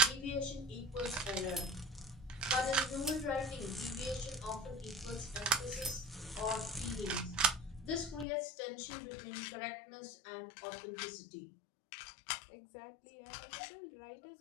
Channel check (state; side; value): drops out; right; at 8.2 s